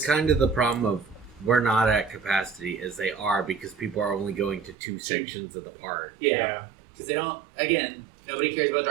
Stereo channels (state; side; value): drops out; left; at 4.8 s